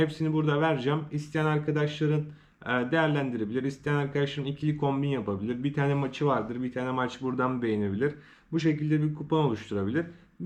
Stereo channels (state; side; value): identical; both; correlation 1.00